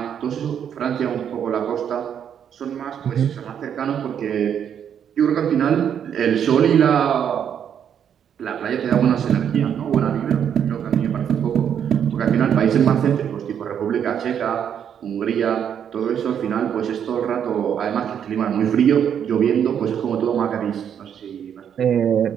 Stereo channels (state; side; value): quieter; left; 8.6 dB